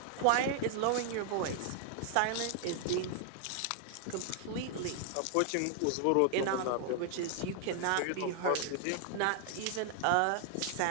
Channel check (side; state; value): both; different; correlation 0.00